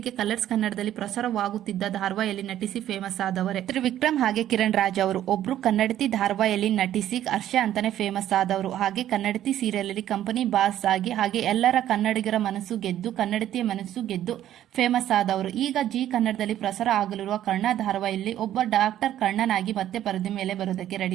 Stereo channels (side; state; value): left; quieter; 12.0 dB